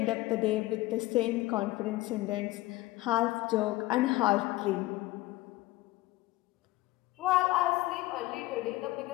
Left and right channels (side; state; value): right; quieter; 18.5 dB